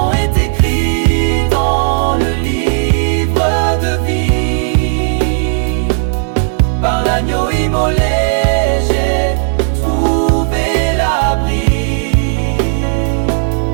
est écrit dans le livre de vie. Par l'agneau immolé, j'ai trouvé l'abri.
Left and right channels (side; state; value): left; silent; 71 dB below the other